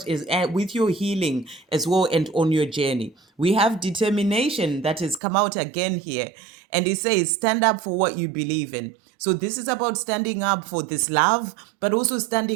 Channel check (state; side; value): drops out; left; at 5.2 s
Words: with your healing as well and on your journey. We have determination that has come out again here. And it says, stand up for what you believe in. So this is about standing up for this love, but also